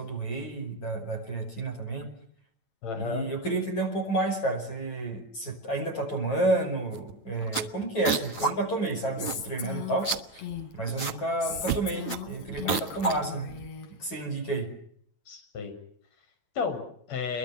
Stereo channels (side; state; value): right; late; 8.8 ms